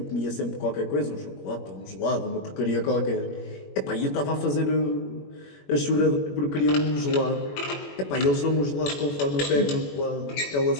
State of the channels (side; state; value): right; late; 21 ms